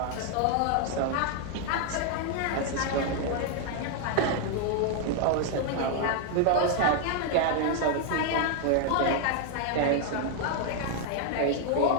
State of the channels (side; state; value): both; different; correlation 0.00